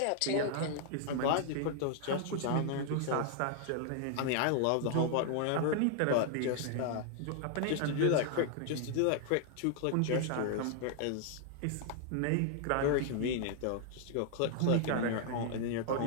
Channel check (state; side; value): different; both; correlation 0.00